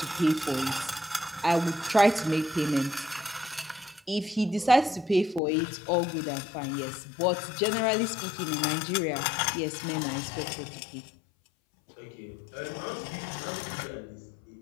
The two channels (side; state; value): right; drops out; at 5.4 s